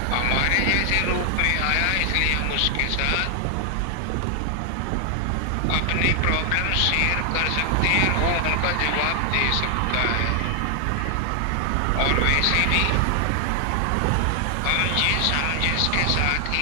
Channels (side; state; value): both; different; correlation 0.00